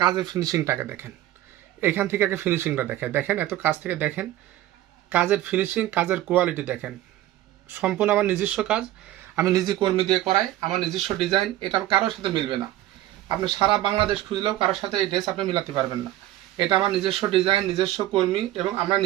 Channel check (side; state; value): left; quieter; 14.5 dB